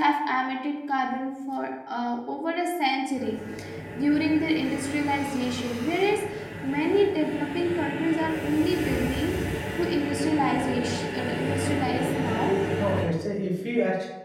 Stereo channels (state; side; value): identical; both; correlation 1.00